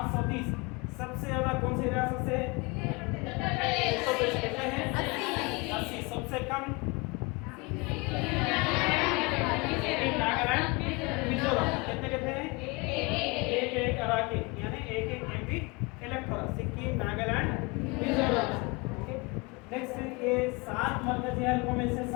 सबसे ज्यादा कौन सी रियासत से कितने हैं? 80। सबसे कम नागालैंड, मिजोरम। कितने कितने हैं? एक अराकी यानी एक एमपी इलेक्ट हो रहा। सिक्किम, नागालैंड, मिजोरम। ओके, नेक्स्ट ये 7 मरकजी हलकों में से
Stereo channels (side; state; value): right; quieter; 27.0 dB